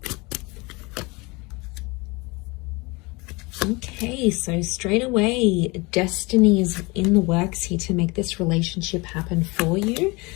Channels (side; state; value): right; quieter; 25.7 dB